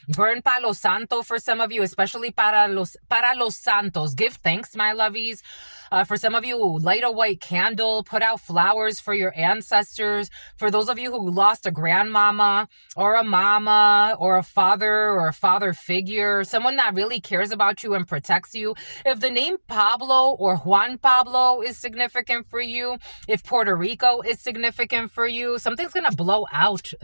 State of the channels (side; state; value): both; inverted; correlation -1.00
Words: burn Palo Santo for some of you, especially para los santos. Give thanks, my lovies. For some of you, light a white candle, put out flowers for your ancestors. For those of you who lost a grandmama or a mama or a father figure, someone that really cares about you and protects you. If the name Pablo or Juan Pablo is significant for you, if Puerto Rico is significant for you, something's going to blow out